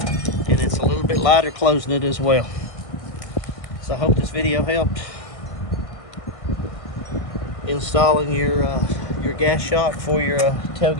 And it's a little bit lighter closing it as well. So I hope this video helped installing your gas shock for your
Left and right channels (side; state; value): right; late; 1.5 ms